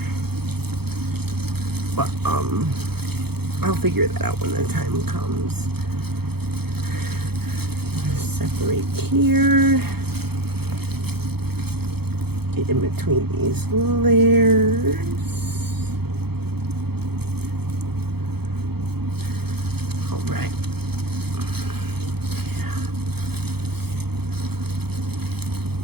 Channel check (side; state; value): left; late; 0.96 ms